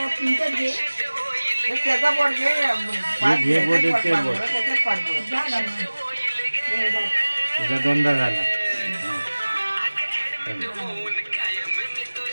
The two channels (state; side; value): inverted; both; correlation -1.00